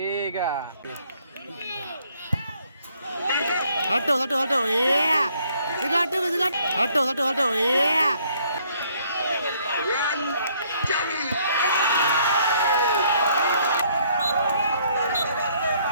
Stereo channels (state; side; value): inverted; both; correlation -0.66